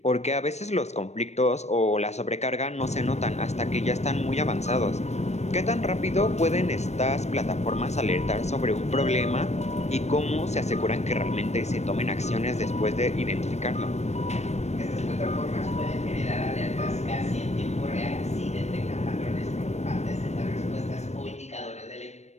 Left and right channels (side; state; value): right; late; 0.32 ms